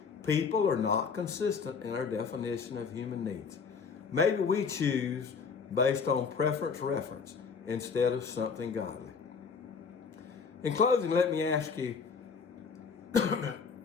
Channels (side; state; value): right; quieter; 5.6 dB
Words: People are not consistent in our definition of human needs. Maybe we choose based on preference instead of something godly. In closing, let me ask you